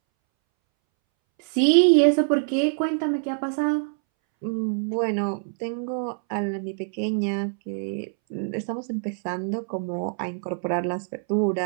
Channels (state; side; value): silent; left; 62 dB below the other